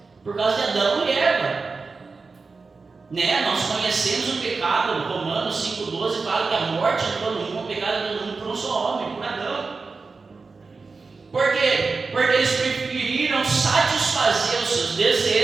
por causa de Adão e Eva. Nós conhecemos o pecado. Romanos 5,12 fala que a morte entrou no mundo, o pecado entrou no mundo por um só homem, por Adão. Por quê? Porque eles preferiram satisfazer os seus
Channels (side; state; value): left; quieter; 4.3 dB